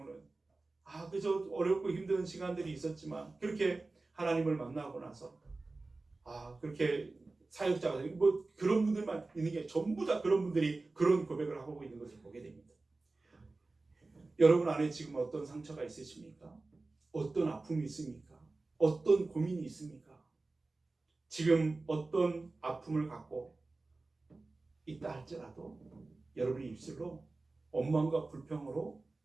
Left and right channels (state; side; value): quieter; left; 3.4 dB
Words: 그저 어렵고 힘든 시간들이 있었지만 그렇게 하나님을 만나고 나서 그렇게 사역자가 그런 분들만 있는 게 전부 다 그런 분들이 그런 고백을 하고 있는 것을 보게 됩니다. 여러분 안에 지금 어떤 상처가 있으십니까? 어떤 아픔이 있습니까? 어떤 고민이 있습니까? 지금 어떤 아픔을 갖고 있다 할지라도 여러분의 입술로 원망과 불평으로